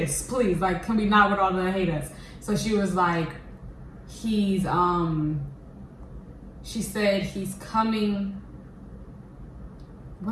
please. Like, can we not with all the hate us? So she was like, she said he's coming.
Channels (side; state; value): both; identical; correlation 1.00